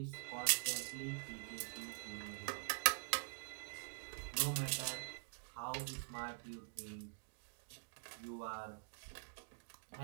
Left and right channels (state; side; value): silent; left; digital silence